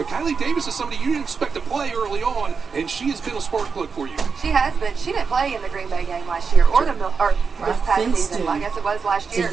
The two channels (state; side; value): quieter; left; 5.4 dB